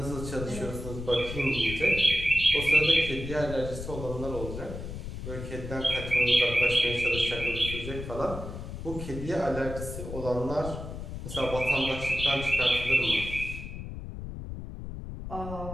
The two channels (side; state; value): left; noise; rumble, 8 dB below the sound